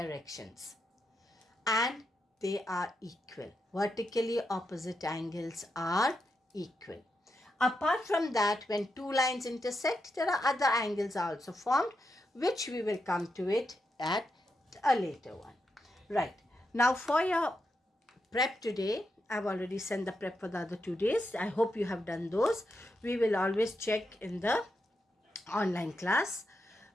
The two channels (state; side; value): normal; both; correlation 0.85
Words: and they are equal. Vertically opposite angles are equal. Apart from that, when two lines intersect, there are other angles also formed, which we will come to it at a later one. Right. Now for your prep today, I've already sent the prep for the other 2 days. I hope you have done those. We will always check in the online class.